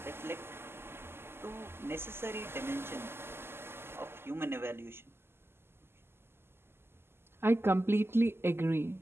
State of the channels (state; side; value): late; left; 0.12 ms